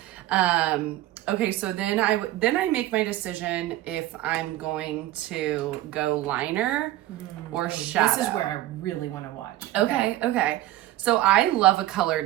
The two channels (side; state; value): left; quieter; 15.3 dB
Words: Okay, so then I make my decision if I'm going to go liner or shadow. This is where I really want to watch. Okay. So I love a